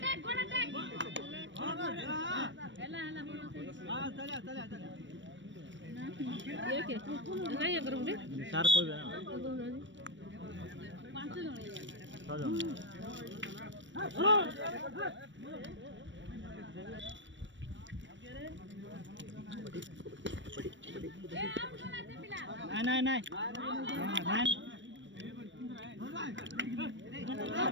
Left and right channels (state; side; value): late; left; 0.54 ms